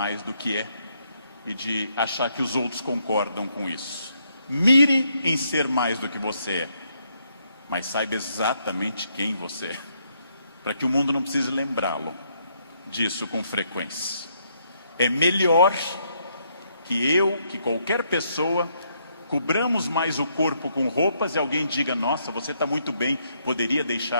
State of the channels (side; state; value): both; inverted; correlation -0.74